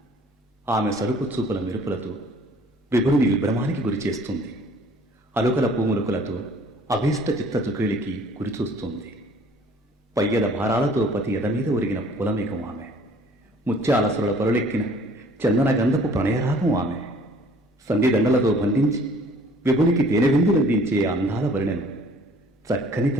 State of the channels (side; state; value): both; normal; correlation 0.54